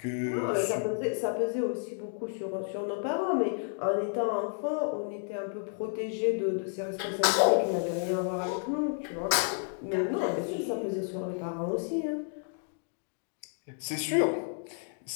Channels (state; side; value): silent; right; 57 dB below the other